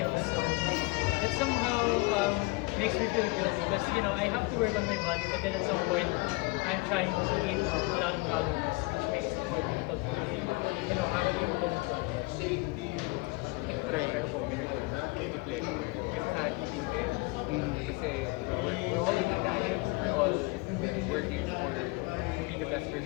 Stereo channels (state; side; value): quieter; right; 25.5 dB